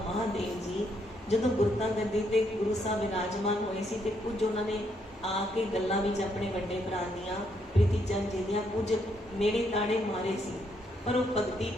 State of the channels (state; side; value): normal; both; correlation 0.74